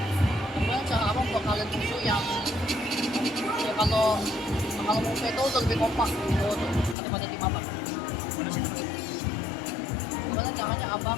gimana cara abang buat kalian musuh yang ya kalau musuh itu udah lebih kompak gitu daripada tim abang? Gimana caranya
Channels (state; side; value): drops out; right; at 7.0 s